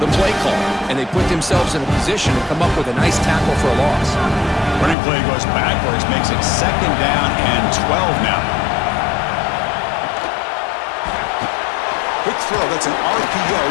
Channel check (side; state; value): right; drops out; at 5.0 s